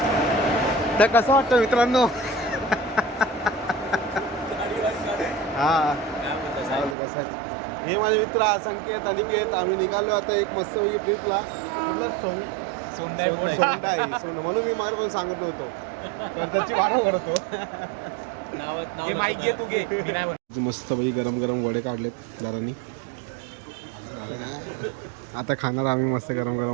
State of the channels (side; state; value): left; drops out; at 7.0 s